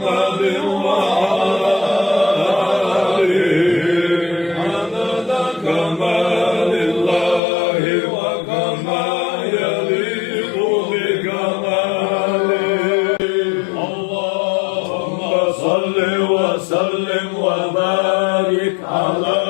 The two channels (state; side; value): drops out; right; at 7.4 s